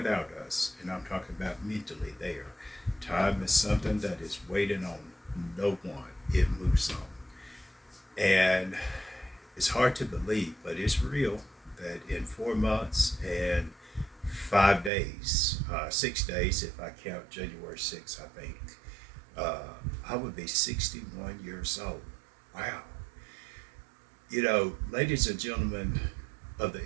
us. And I'm talking about mentally there. Time is something that is waiting on no one. It moves on. And it's hard to believe, but it's real that in 4 months and 5 days, 6 days, if I count January 6th, I think, I would be 61 years old. Wow. Ladies and gentlemen of the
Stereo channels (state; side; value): drops out; left; at 14.9 s